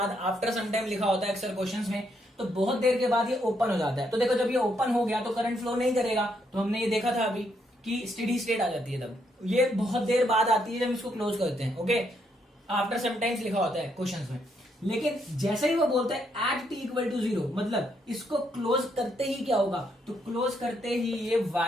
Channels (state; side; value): normal; both; correlation 0.75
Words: आफ्टर सम टाइम लिखा होता है अक्सर क्वेश्चंस में, तो बहुत देर के बाद ये ओपन हो जाता है। तो देखो, जब ये ओपन हो गया तो करंट फ्लो नहीं करेगा, तो हमने ये देखा था अभी कि स्टेडी स्टेट आ जाती है। तब ये बहुत देर बाद आती है जब इसको क्लोज करते हैं। ओके, आफ्टर सम टाइम्स लिखा होता है क्वेश्चंस में। लेकिन जैसे ही वो बोलते हैं एट t इक्वल टू 0, मतलब इसको क्लोज करते ही क्या होगा, तो क्लोज करते ही ये